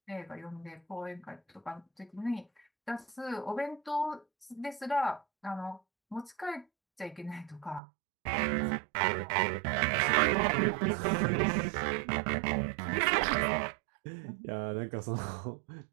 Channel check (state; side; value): drops out; left; at 7.8 s